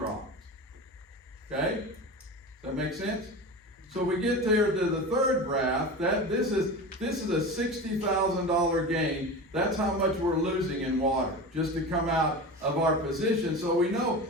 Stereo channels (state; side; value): normal; both; correlation 0.29